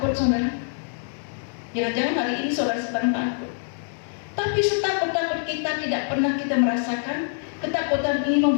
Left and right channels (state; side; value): silent; right; 62 dB below the other